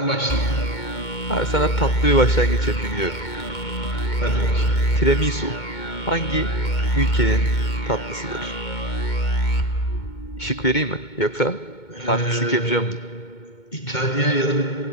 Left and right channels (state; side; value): late; right; 2.2 ms